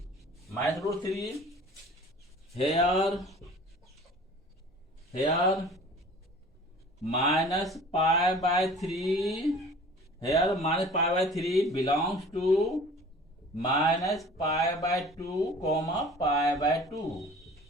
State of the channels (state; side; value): normal; both; correlation 0.45